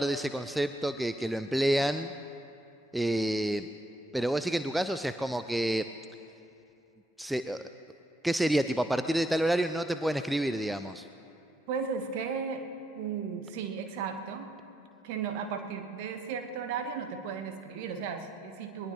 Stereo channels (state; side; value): normal; both; correlation 0.76